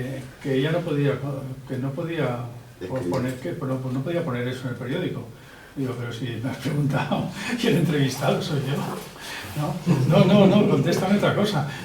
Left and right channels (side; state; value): both; identical; correlation 1.00